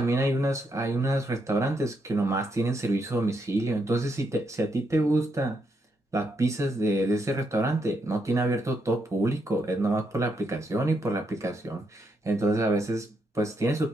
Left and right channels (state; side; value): normal; both; correlation 0.79